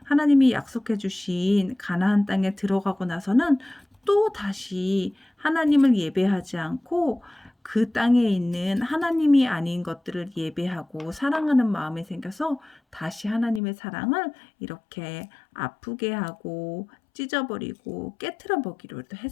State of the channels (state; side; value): drops out; right; at 13.6 s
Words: 하나님이 약속해 주신 가나안 땅에 들어가고 나서는 또 다시 하나님을 예배하지 않고 그 땅에 있는 하나님이 아닌 것들을 예배하고 사랑하는 마음이 생겨서 다시 하나님의 사랑을 이렇게 아프게 하고 찢어버리고 깨트려 보기로도